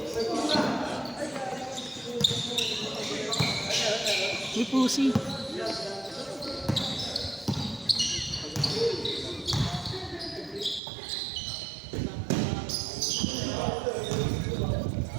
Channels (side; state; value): left; drops out; at 10.8 s